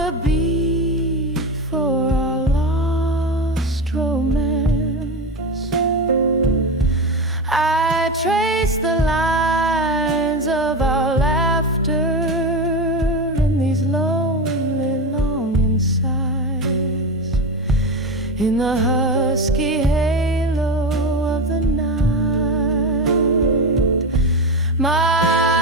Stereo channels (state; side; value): normal; both; correlation 0.19